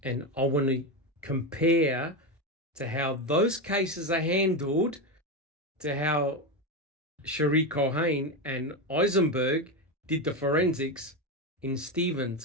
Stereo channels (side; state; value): both; normal; correlation 0.13